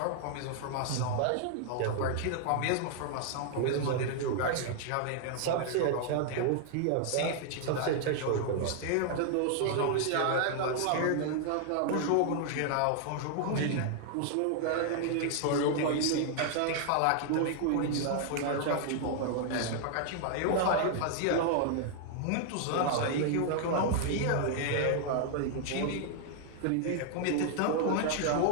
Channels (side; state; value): both; different; correlation 0.00